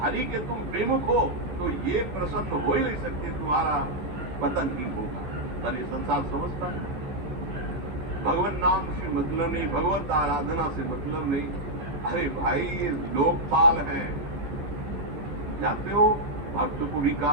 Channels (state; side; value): late; left; 15 ms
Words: हरि के तुम विमुख हो तो ये प्रसन्न हो ही नहीं सकते, तुम्हारा पतन ही होगा। पर ये संसार समझता नहीं, भगवान नाम से मतलब नहीं, भगवत आराधना से मतलब नहीं। अरे भाई ये लोकपाल हैं, जानते हो भक्त को भी